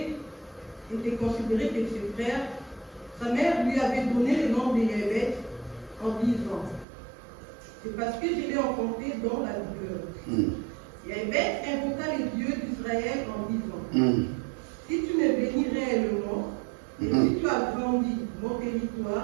que ses frères. Sa mère lui avait donné le nom de Jaébeth en disant, c'est parce que je l'ai enfanté dans la douleur. Jaébeth invoqua le Dieu d'Israël en disant, si tu me bénis réellement, et si tu agrandis mon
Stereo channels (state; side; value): drops out; left; at 6.9 s